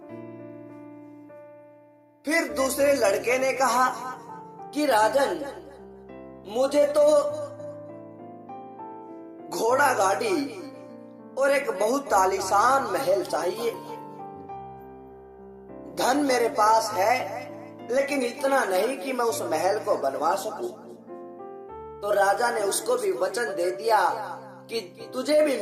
फिर दूसरे लड़के ने कहा कि राजन, मुझे तो घोड़ा गाड़ी और एक बहुत आलीशान महल चाहिए। धन मेरे पास है, लेकिन इतना नहीं कि मैं उस महल को बनवा सकूं। तो राजा ने उसको भी वचन दे दिया कि तुझे भी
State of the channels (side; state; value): both; identical; correlation 1.00